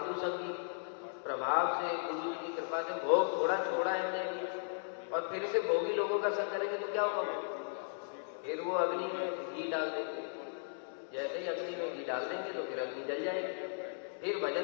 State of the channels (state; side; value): silent; right; digital silence